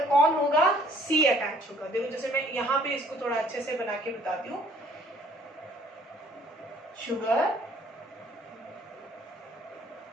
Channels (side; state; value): both; normal; correlation 0.58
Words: कौन होगा, C अटैच होगा। देखो जैसे मैं यहाँ पे इसको थोड़ा अच्छे से बना के बताती हूँ, शुगर,